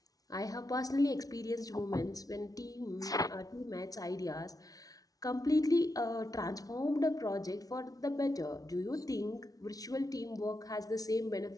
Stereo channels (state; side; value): late; right; 0.18 ms